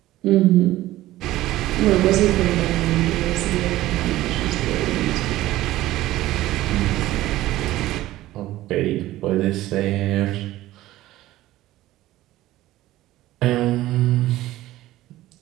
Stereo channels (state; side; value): quieter; left; 15.8 dB